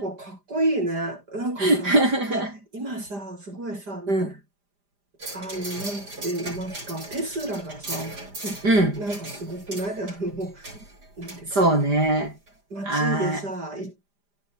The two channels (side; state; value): left; late; 5.0 ms